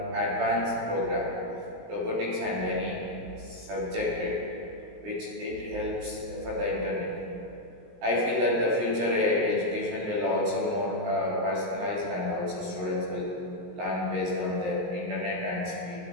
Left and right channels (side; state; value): left; late; 19 ms